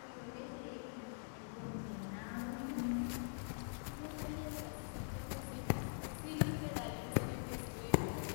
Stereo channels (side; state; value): right; silent; digital silence